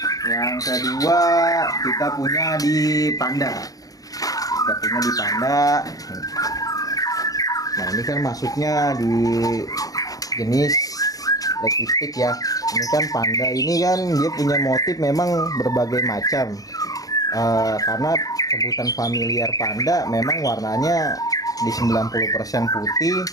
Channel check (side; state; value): right; late; 0.17 ms